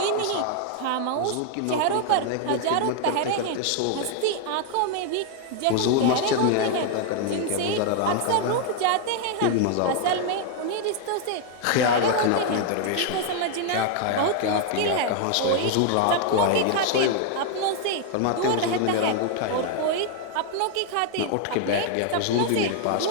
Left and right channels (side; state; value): both; different; correlation 0.00